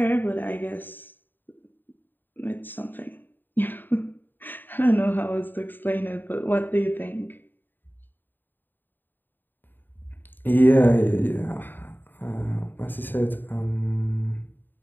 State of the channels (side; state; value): right; late; 0.092 ms